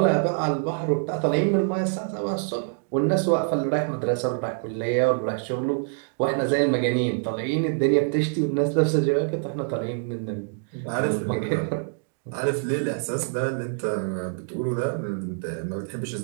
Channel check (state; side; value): silent; left; digital silence